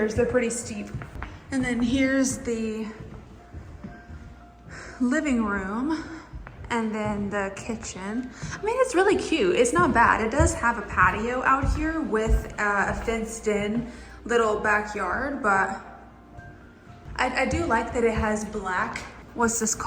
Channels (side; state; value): both; identical; correlation 1.00